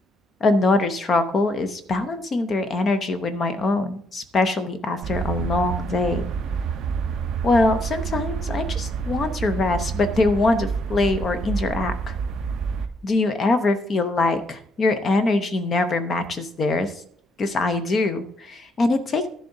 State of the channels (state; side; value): normal; both; correlation 0.73